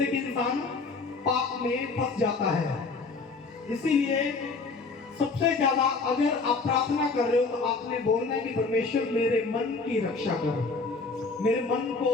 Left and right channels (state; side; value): quieter; right; 4.1 dB